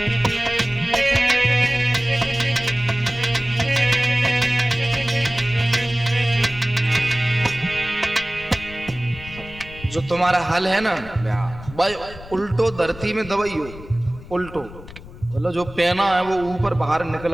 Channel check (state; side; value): noise; left; rumble, 16 dB below the sound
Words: जो तुम्हारा हल है ना भाई, उल्टो धरती में दबाइयो, उल्टो मतलब जो पहना है वो ऊपर बाहर